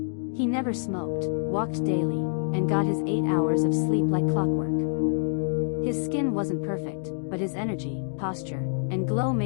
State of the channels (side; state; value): right; silent; digital silence